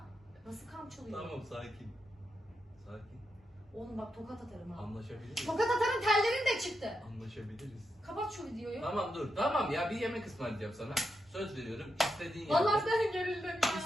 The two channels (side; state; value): both; normal; correlation 0.85